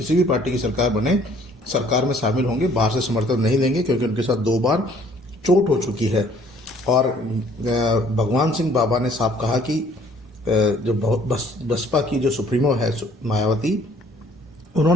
भी पार्टी की सरकार बने, सरकार में शामिल होंगे, बाहर से समर्थन नहीं देंगे, क्योंकि उनके साथ 2 बार चोट हो चुकी है। और भगवान सिंह बाबा ने साफ कहा कि जो बसपा की जो सुप्रीमो है मायावती,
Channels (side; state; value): both; normal; correlation 0.58